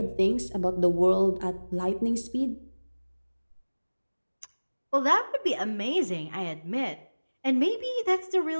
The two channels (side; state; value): both; inverted; correlation -1.00